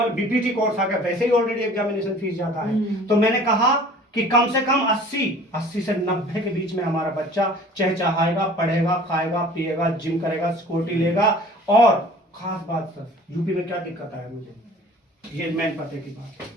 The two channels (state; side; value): normal; both; correlation 0.48